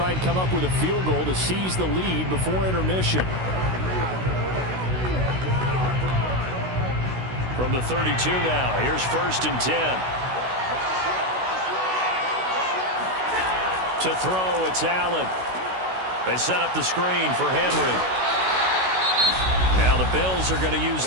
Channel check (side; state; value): left; late; 16 ms